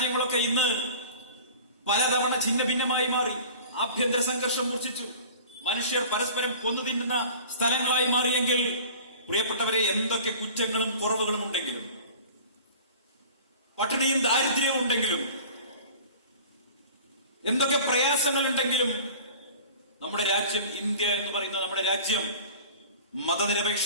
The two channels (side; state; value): both; inverted; correlation -0.41